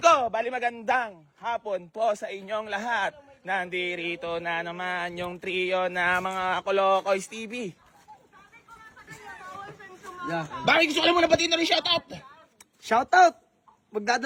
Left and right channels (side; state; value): both; identical; correlation 1.00